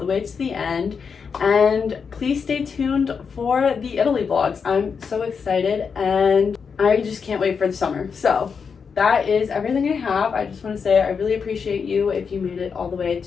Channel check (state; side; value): quieter; right; 6.0 dB